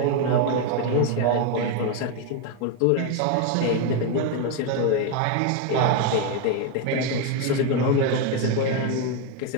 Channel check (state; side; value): different; both; correlation 0.01